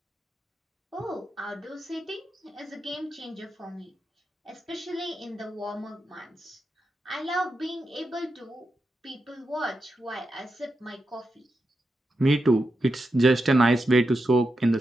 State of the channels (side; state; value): both; normal; correlation 0.88